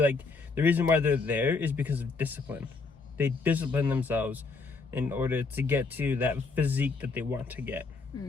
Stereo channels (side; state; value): right; quieter; 4.3 dB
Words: the reason why they're there is because of discipline. They discipline themselves in order to get to that physique that they want to get.